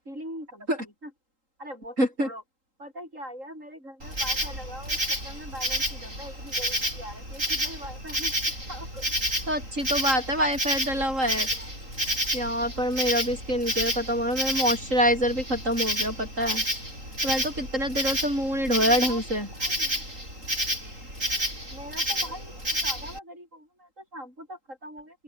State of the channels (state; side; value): late; left; 3.8 ms